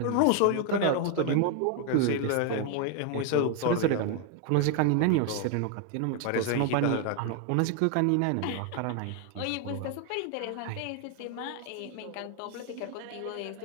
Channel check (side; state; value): both; different; correlation 0.01